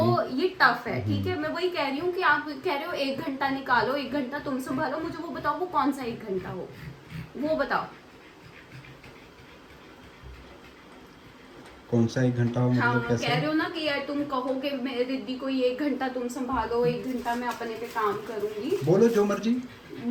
एग्री। ये टफ है, ठीक है। मैं वही कह रही हूँ कि आप कह रहे हो 1 घंटा निकालो, 1 घंटा तुम संभालो, मुझे वो बताओ वो कौन सा 1 घंटा हो, वो बताओ। कौन सा 1 घंटा हो, हाँ, मतलब कैसे? कह रहे हो ना कि यार तुम कहो कि मैं रिद्धि को ये 1 घंटा तुम संभालो, 1 घंटा मैं अपने पे काम करूंगी। बोलो जो मर्जी।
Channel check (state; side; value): identical; both; correlation 1.00